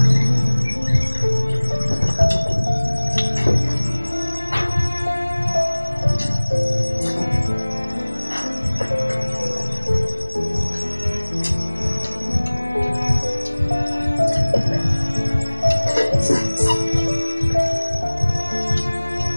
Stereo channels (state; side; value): inverted; both; correlation -1.00